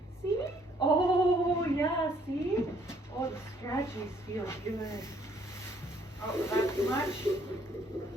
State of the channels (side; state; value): both; normal; correlation 0.65